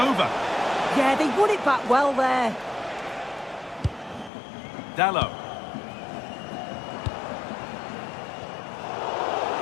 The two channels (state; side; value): drops out; right; at 4.3 s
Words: Yeah, they won it back well there. Dalot.